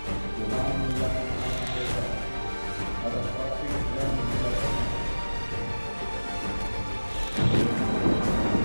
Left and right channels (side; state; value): both; inverted; correlation -1.00